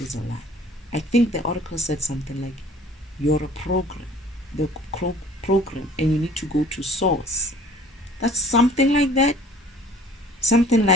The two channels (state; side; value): normal; both; correlation 0.50